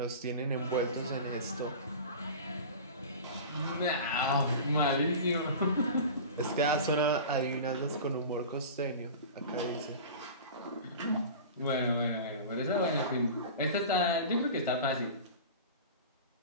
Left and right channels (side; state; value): both; inverted; correlation -0.34